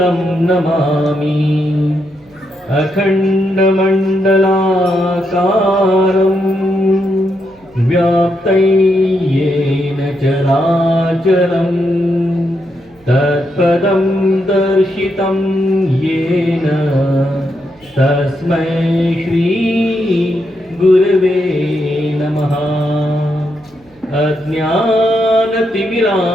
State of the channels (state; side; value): noise; right; hum, 30 dB below the sound